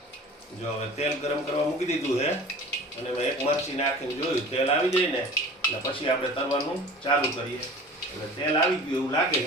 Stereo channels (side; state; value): both; normal; correlation 0.42